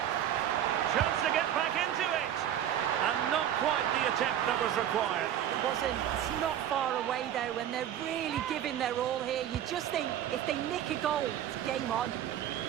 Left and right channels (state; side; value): quieter; left; 10.7 dB